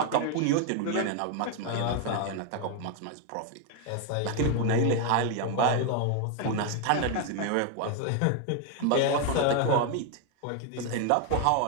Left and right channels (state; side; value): different; both; correlation 0.01